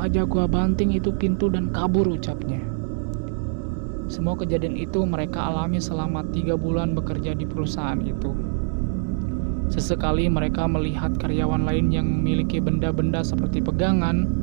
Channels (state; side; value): silent; left; 63 dB below the other